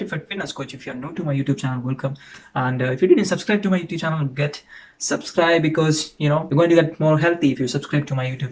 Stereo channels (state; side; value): identical; both; correlation 1.00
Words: fitness coach. If you are new to my YouTube channel, welcome. And if you didn't subscribe to my YouTube channel, get subscribe because you're going to get more healthy if you subscribe to my